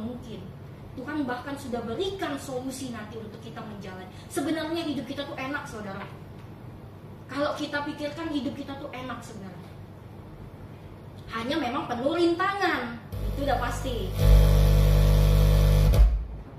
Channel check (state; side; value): identical; both; correlation 1.00